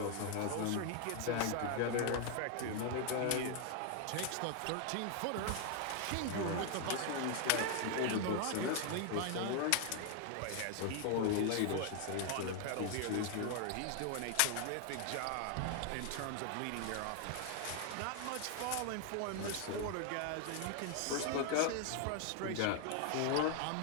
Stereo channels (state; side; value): different; both; correlation 0.00